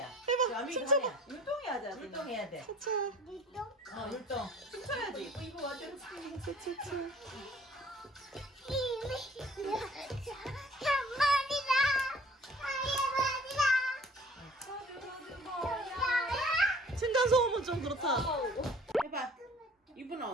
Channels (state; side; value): normal; both; correlation 0.52